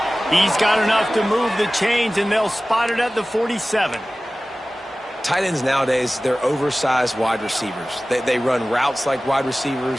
He's got enough to move the chains, and they'll spot it at the 47. Tight ends nowadays, they're oversized wide receivers. They run routes like wide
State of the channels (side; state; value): both; normal; correlation 0.97